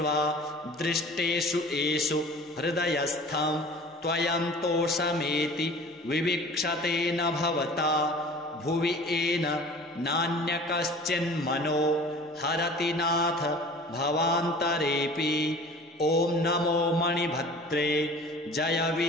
दृष्टेषु एषु हृदयस्थं त्वयन्तोषमेति विवीक्षते न भवता भुवि येन नान्यकश्चिन्मनो हरति नाथ भवान्तरेऽपि। ॐ नमो मणिभद्रे जय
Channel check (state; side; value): normal; both; correlation 0.44